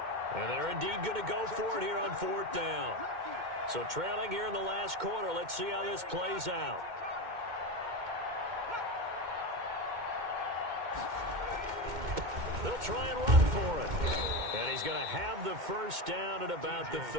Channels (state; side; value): late; left; 2.1 ms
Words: And they're indeed going to go for it here on 4th down. So trailing here in the last quarter, let's see how this plays out. They'll try and run for it. And he's going to have the first down at about the